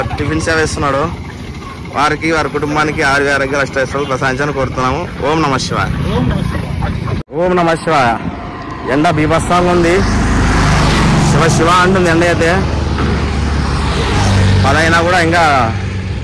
టిఫిన్ సేవ ఇస్తున్నాడు. వారికి, వారి కుటుంబానికి ఆరోగ్య అష్టైశ్వర్యాలు ప్రసాదించాలని కోరుతున్నాము. ఓం నమ శివాయ. ఓం నమ శివాయ. ఎండ బీభత్సంగా ఉంది. శివ అంటుంది ఎండ అయితే. 10 అయినా కూడా ఇంకా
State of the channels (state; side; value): identical; both; correlation 1.00